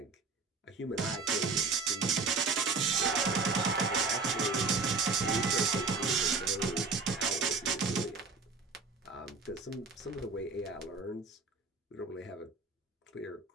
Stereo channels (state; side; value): quieter; left; 4.3 dB